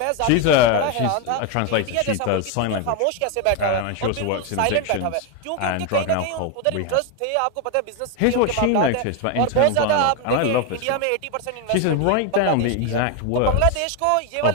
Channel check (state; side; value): different; both; correlation 0.01